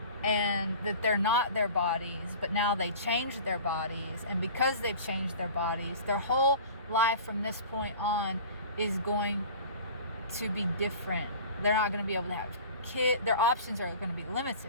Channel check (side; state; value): both; inverted; correlation -0.40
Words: and that they're not their bodies, but now they changed their bodies, and because they've changed their bodies, their whole life from this point on is going to be different. They're not going to be able to have kids. Their options are going to be